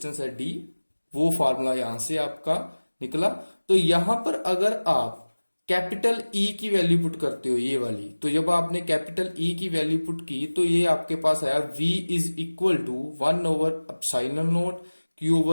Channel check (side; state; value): both; inverted; correlation -1.00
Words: है डी, वो फार्मूला यहां से आपका निकला। तो यहां पर अगर आप कैपिटल ई की वैल्यू पुट करते हो, ये वाली, तो जब आपने कैपिटल ई की वैल्यू पुट की तो ये आपके पास आया v is equal to 1 over epsilon naught q